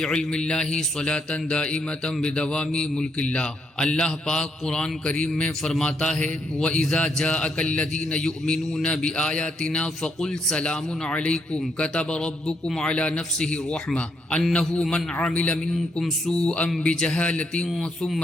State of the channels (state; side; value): normal; both; correlation 0.75